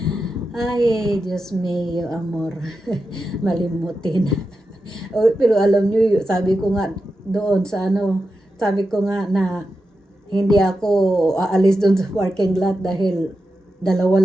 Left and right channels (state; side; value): normal; both; correlation 0.90